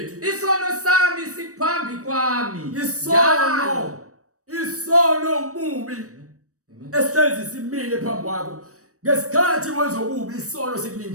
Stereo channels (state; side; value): late; left; 0.66 ms